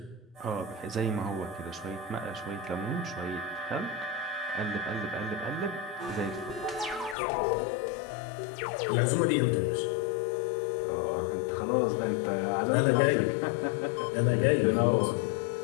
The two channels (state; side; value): drops out; right; at 7.2 s